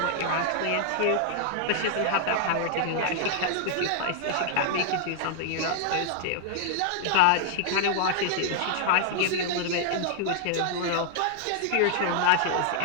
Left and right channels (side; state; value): both; different; correlation -0.01